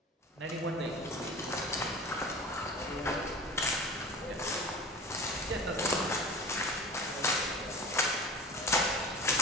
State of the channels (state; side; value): normal; both; correlation 0.38